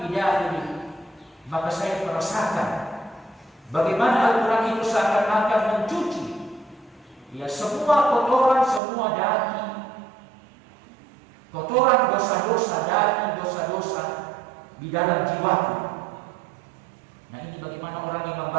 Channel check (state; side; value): drops out; left; at 8.8 s